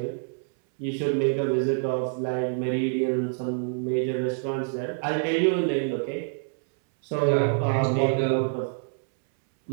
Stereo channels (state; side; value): silent; left; 61 dB below the other